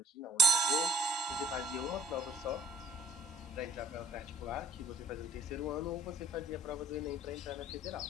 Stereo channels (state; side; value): normal; both; correlation 0.54